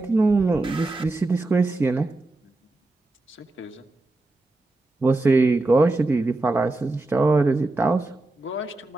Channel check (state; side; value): quieter; left; 3.0 dB